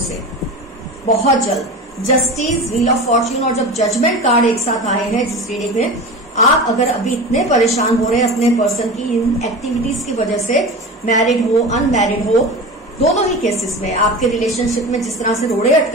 बहुत जल्द। जस्टिस, व्हील ऑफ फॉर्च्यून और जब जजमेंट कार्ड एक साथ आए हैं जिस रीडिंग में, आप अगर अभी इतने परेशान हो रहे हैं अपने पर्सन की इन एक्टिविटीज की वजह से, मैरिड हो अनमैरिड हो, दोनों ही केसेस में आपके रिलेशनशिप में जिस तरह से रोड़े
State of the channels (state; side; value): normal; both; correlation 0.30